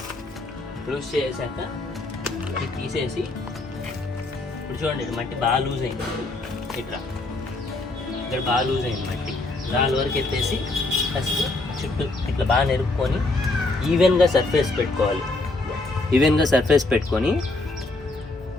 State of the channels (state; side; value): quieter; right; 3.1 dB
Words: లూజ్ చేసాక ఇది తీసేసి, ఇప్పుడు చూడండి మట్టి బాగా లూజ్ అయింది. ఇట్లా ఇక్కడ బాగా లూజ్ అయింది మట్టి. దాని వరకు ఎత్తేసి ఫస్ట్ చుట్టూ ఇట్లా బాగా నెరుపుకొని ఈవెన్గా సర్ఫేస్ పెట్టుకోవాలి. ఈవెన్గా సర్ఫేస్ పెట్టుకొని